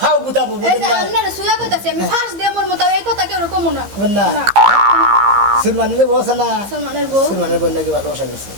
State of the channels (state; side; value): late; left; 15 ms